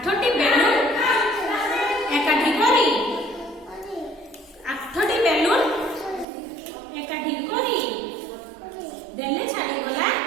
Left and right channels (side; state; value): left; drops out; at 6.2 s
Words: बेलून एकाठी करी 8टी बेलून एकाठी करी देले छाड़ी गला